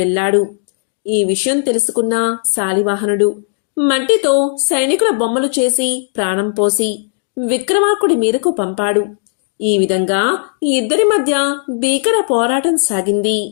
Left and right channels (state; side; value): silent; right; digital silence